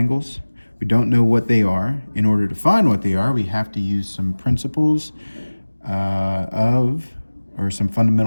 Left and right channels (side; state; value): both; inverted; correlation -1.00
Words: We don't know what they are. In order to find what they are, we have to use some principles or some